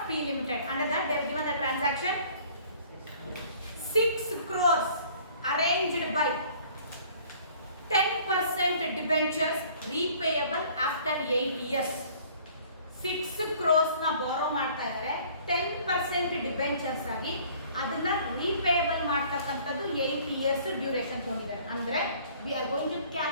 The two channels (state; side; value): inverted; both; correlation -0.54